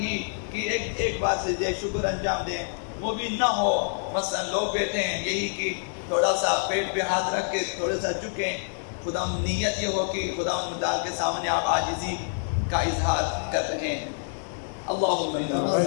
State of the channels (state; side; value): silent; right; digital silence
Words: کہ ایک بار سجدہ شکر انجام دیں، وہ بھی نہ ہو مثلا لوگ بیٹھے ہیں یہی کہ تھوڑا سا پیٹ پہ ہاتھ رکھ کے تھوڑا سا جھکیں، خدا نیت یہ ہو کہ خدا متعال کے سامنے آپ عاجزی کا اظہار کر رہے ہیں۔ اللہم